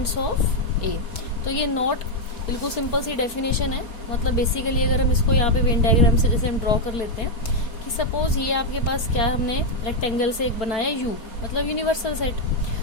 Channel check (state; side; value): late; right; 4.5 ms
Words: of A. तो ये not बिल्कुल simple सी definition है। मतलब basically अगर हम इसको यहाँ पे वेन डायग्राम से जैसे हम ड्रॉ कर लेते हैं कि सपोज ये आपके पास क्या हमने रेक्टेंगल से एक बनाया यू, मतलब यूनिवर्सल सेट,